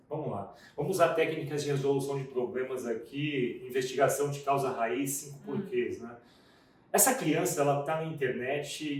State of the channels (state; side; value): identical; both; correlation 1.00